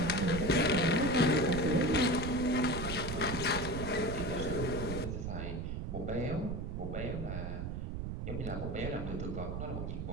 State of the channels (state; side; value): noise; right; rumble, 4 dB below the sound